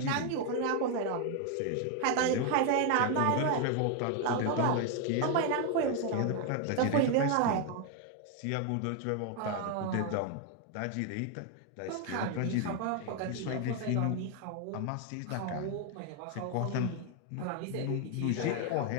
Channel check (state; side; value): different; both; correlation 0.01